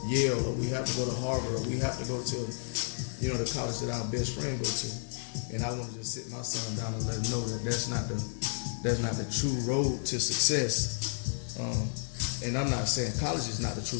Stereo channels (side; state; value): right; silent; 57 dB below the other